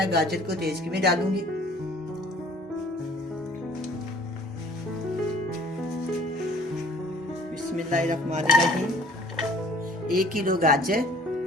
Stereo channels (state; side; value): normal; both; correlation 0.54